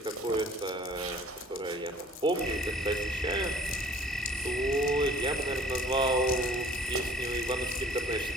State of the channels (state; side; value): normal; both; correlation 0.52